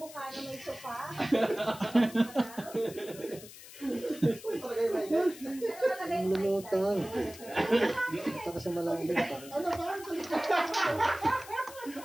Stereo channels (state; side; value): noise; left; hiss, 17 dB below the sound